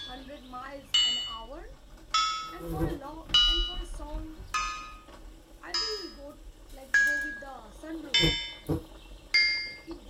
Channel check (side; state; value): both; identical; correlation 1.00